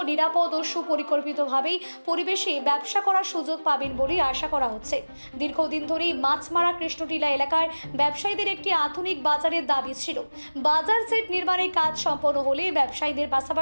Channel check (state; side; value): inverted; both; correlation -1.00